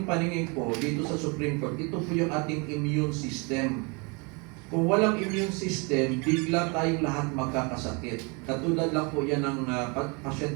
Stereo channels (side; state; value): left; quieter; 31.0 dB